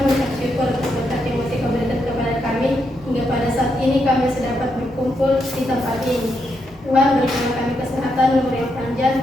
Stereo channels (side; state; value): both; normal; correlation 0.81